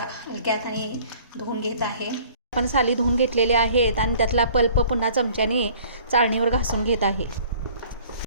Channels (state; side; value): inverted; both; correlation -0.52